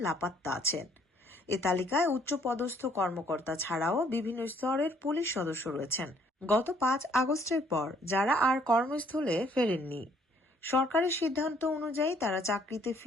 লাপাত্তা আছেন। এ তালিকায় উচ্চপদস্থ কর্মকর্তা ছাড়াও বিভিন্ন স্তরের পুলিশ সদস্য রয়েছেন। গত ৫ আগস্টের পর যারা আর কর্মস্থলে ফেরেননি, সরকারের সিদ্ধান্ত অনুযায়ী তারা চাকরিতে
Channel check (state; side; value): normal; both; correlation 0.63